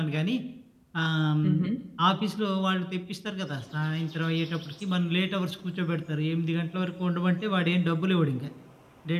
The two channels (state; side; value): identical; both; correlation 1.00